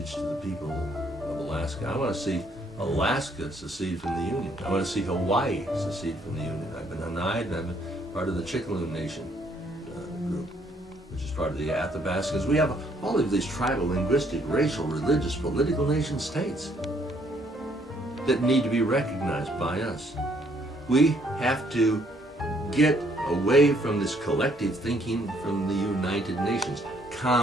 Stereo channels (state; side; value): normal; both; correlation 0.67